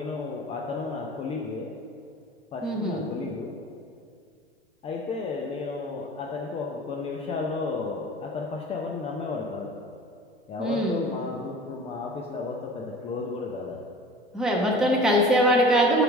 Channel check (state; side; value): normal; both; correlation 0.41